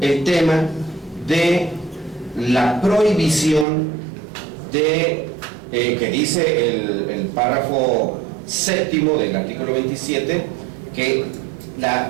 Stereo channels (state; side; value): drops out; left; at 3.7 s